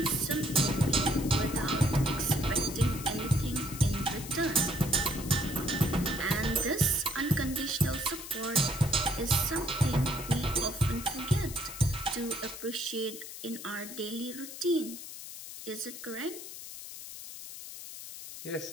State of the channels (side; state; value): left; noise; hiss, 11 dB below the sound